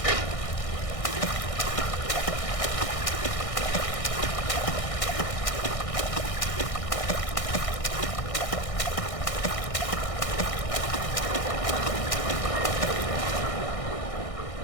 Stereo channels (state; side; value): late; right; 1.6 ms